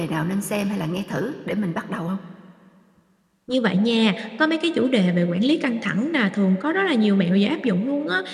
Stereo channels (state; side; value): identical; both; correlation 1.00